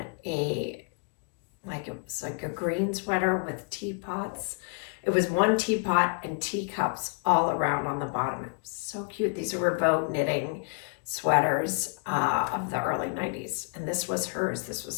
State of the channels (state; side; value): quieter; right; 38.4 dB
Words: it was like a green sweater with teapots. It was one teapot and teacups all around on the bottom. It was so cute. These were Vogue knitting sweaters of the early 90s. And this was hers. This